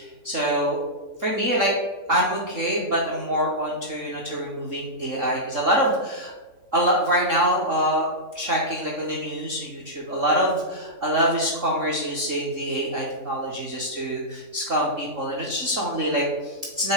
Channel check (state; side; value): late; left; 3.5 ms